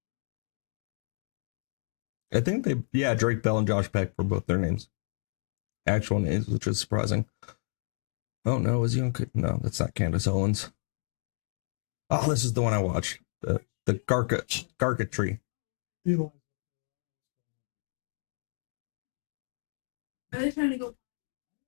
I think Drake Bell and Josh Peck were both their names. Actual names, which is surprising. Oh no, is he on? No, that's not Candace Owens. Oh, this is the one I watched. The Garka tree. Are they trying to go?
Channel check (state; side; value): silent; right; 57 dB below the other